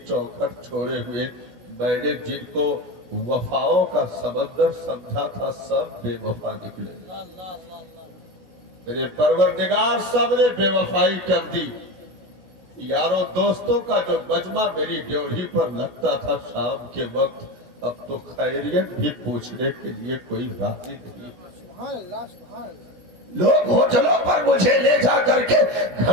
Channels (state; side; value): late; left; 16 ms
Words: چوکھٹ چھوڑے ہوئے، میں نے جن کو وفاؤں کا سمندر سمجھا تھا سب بے وفا نکلے، اللہ اللہ اللہ اللہ میرے پروردگار سب نے بے وفائی کر دی۔ یاروں دوستوں کا جو مجمع میری ڈیوڑھی پر لگتا تھا شام کے وقت، اب تو خیریت بھی پوچھنے کے لیے کوئی راضی نہیں۔ سبحان اللہ سبحان اللہ۔ لوگ ہوٹلوں پر مجھے لے جا کر کے